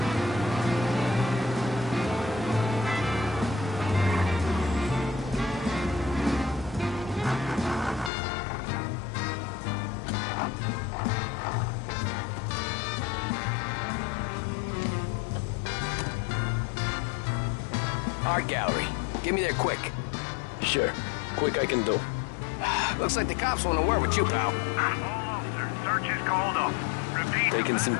Art gallery. Get me there quick. Sure. Quick I can do. Looks like the cops want to work with you, pal. All officers, search is called up. Repeat. Taking some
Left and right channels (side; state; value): right; drops out; at 8.1 s